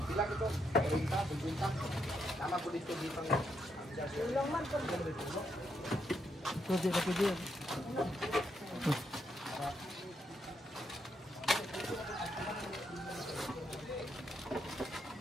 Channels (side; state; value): both; normal; correlation 0.79